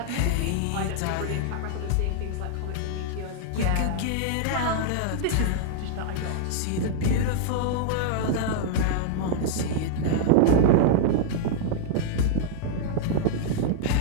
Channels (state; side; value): different; both; correlation -0.01